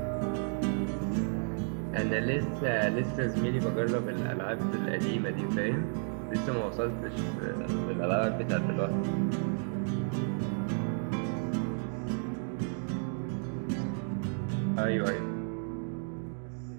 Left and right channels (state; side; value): silent; left; 56 dB below the other